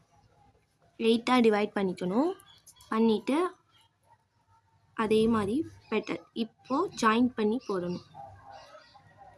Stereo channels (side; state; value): both; identical; correlation 1.00